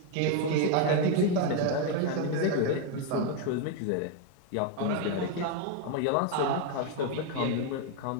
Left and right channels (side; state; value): both; different; correlation 0.01